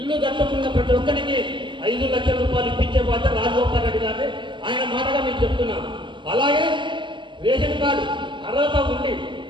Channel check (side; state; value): left; late; 0.24 ms